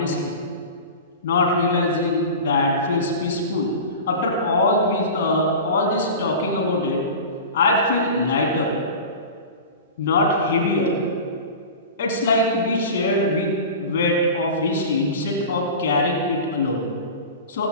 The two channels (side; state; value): both; inverted; correlation -0.32